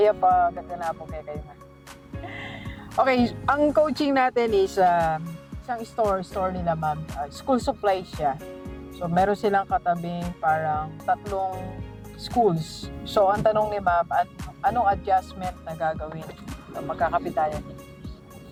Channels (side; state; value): both; identical; correlation 1.00